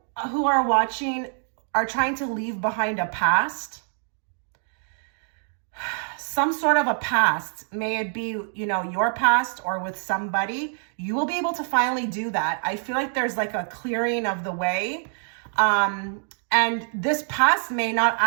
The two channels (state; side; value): silent; left; 58 dB below the other